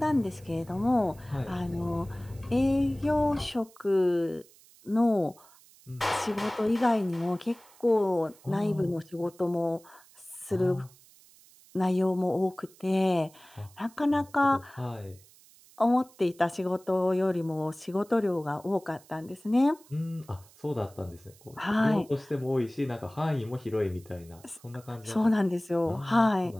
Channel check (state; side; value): noise; right; hiss, 26 dB below the sound